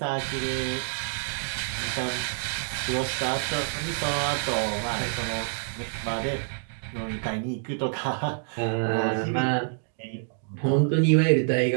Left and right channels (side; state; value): left; silent; digital silence